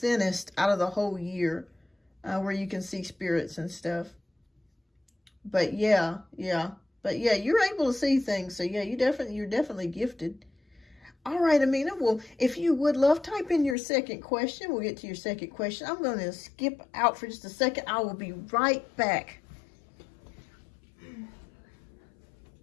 out of the whole year, where you can see spirits and stuff. But yeah. But yeah, you're able to see things. So yeah, you're definitely gifted. All right, Amina. Well, if you would love, type in your second question. We'll get to your second question. I'm going to skip out for just a second. I will be right back.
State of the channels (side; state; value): right; drops out; at 13.8 s